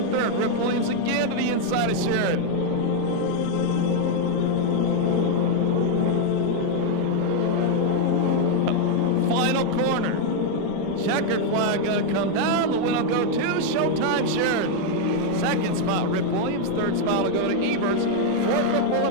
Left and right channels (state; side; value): different; both; correlation 0.01